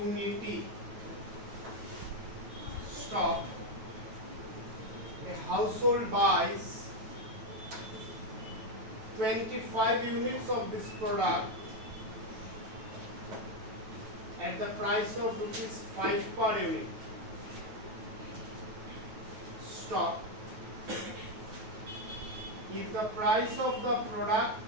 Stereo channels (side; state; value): left; late; 9.2 ms